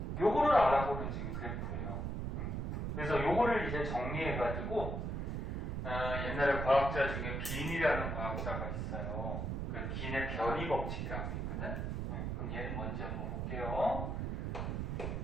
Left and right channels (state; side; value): noise; right; rumble, 2 dB below the sound